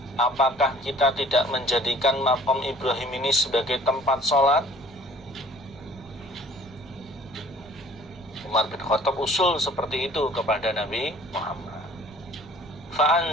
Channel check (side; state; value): right; noise; rumble, 21 dB below the sound